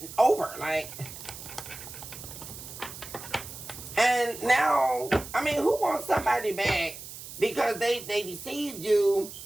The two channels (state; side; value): noise; right; hiss, 12 dB below the sound